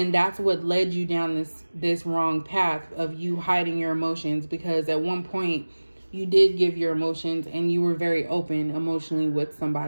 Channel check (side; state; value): both; inverted; correlation -1.00